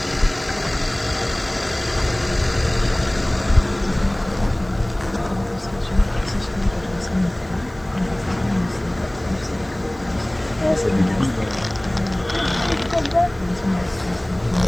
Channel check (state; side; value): noise; right; hiss, 28 dB below the sound